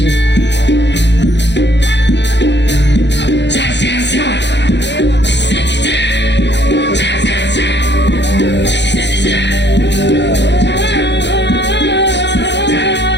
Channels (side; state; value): right; late; 0.51 ms